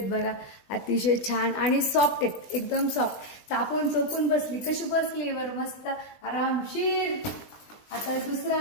बघा. अतिशय छान आणि सॉफ्ट आहेत, एकदम सॉफ्ट. चापून चोपून बसली कशी बसली बरं, मस्त आरामशीर. आता दुसरा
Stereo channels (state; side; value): late; right; 20 ms